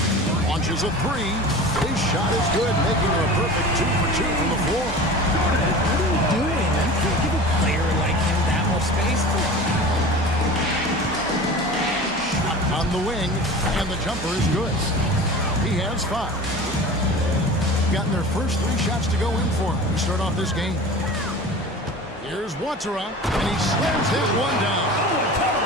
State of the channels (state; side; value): normal; both; correlation 0.36